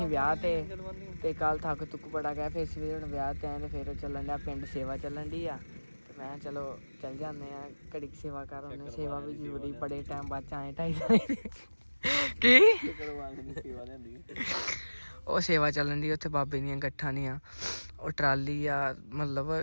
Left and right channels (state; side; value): inverted; both; correlation -1.00